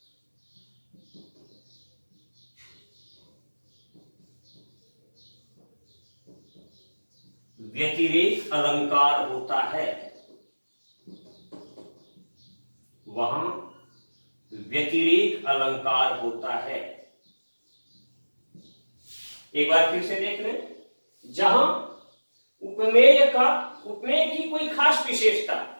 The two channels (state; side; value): inverted; both; correlation -1.00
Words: व्यतिरेक अलंकार होता है। वहां व्यतिरेक अलंकार होता है। एक बार फिर से देख लें। जहां उपमेय की कोई खास विशेषता,